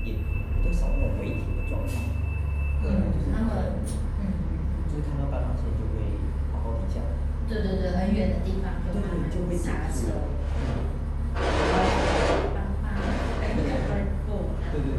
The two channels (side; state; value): both; identical; correlation 1.00